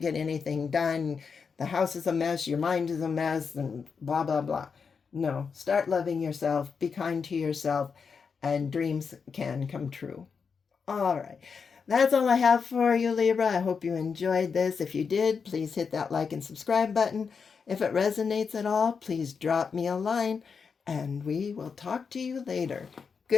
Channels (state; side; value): quieter; right; 5.7 dB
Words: get anything done. The house is a mess, your mind is a mess, and blah, blah, blah. No, start loving yourself, be kind to yourself, and dreams can come true. All right. That's all I have for you, Libra. I hope you enjoyed this. If you did, please hit that like and subscribe button. If it resonates at all, please drop me a line, and we will talk to you later.